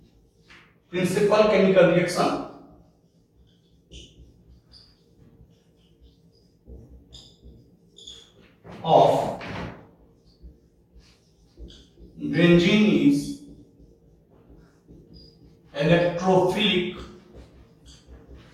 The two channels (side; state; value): both; identical; correlation 1.00